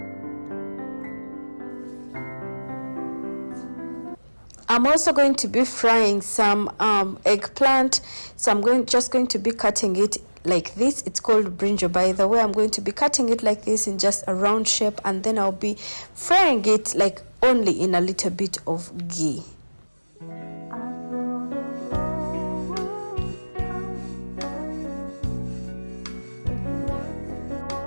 I'm also going to be frying some eggplant, so I'm just going to be cutting it like this. It's called brinjal, by the way. I'm going to be cutting it like this in just a round shape, and then I'll be frying it like only in a little bit of ghee.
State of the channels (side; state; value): both; inverted; correlation -1.00